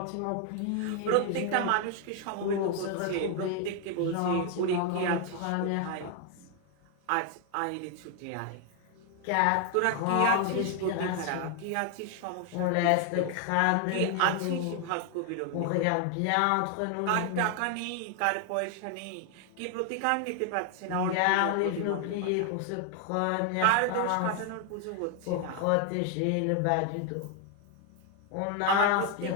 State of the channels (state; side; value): different; both; correlation 0.01